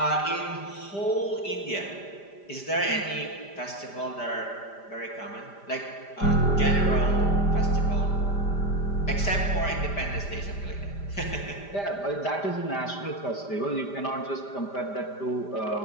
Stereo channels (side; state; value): right; late; 5.0 ms